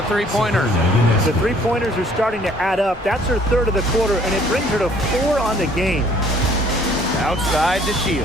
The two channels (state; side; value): normal; both; correlation 0.59